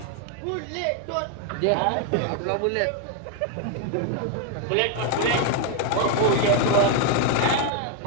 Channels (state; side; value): different; both; correlation 0.01